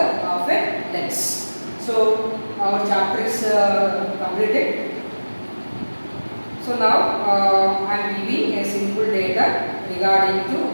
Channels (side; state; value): both; inverted; correlation -1.00